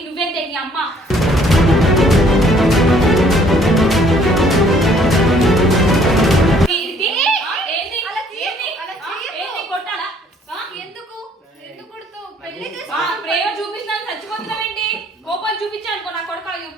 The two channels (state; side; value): normal; both; correlation 0.61